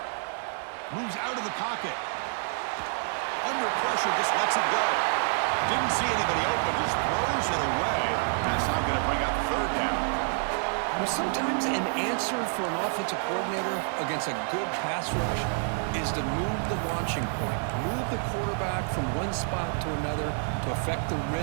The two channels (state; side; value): silent; left; 59 dB below the other